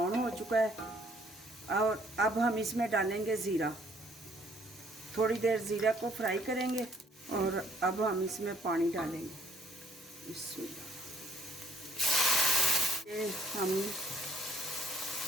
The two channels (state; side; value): normal; both; correlation 0.63